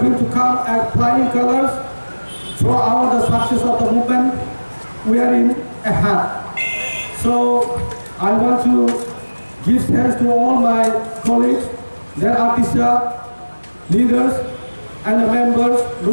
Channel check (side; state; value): both; inverted; correlation -1.00